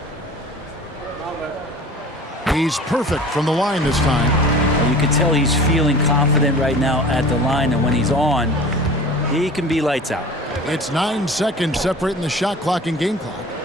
He's perfect from the line this time. You can tell he's feeling confident right now at the line, and when he's on, he can be lights out. It's 9 seconds separating the shot clock and game clock.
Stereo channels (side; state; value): both; normal; correlation 0.41